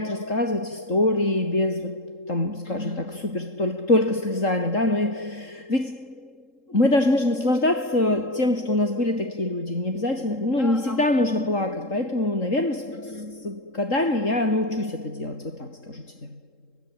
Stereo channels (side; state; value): right; late; 3.7 ms